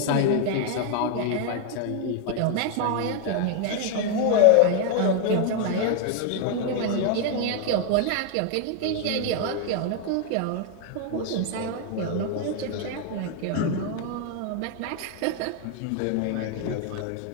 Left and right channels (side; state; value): both; different; correlation 0.00